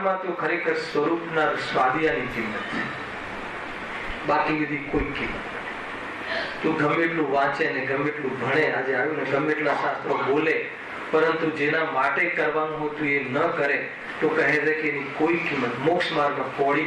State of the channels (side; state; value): both; identical; correlation 1.00